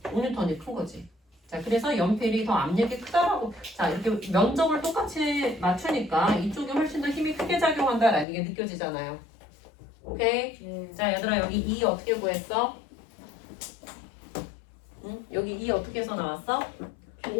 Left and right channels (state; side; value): drops out; right; at 8.2 s